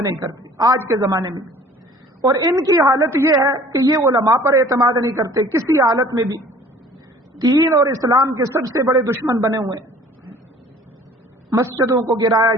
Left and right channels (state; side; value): normal; both; correlation 0.50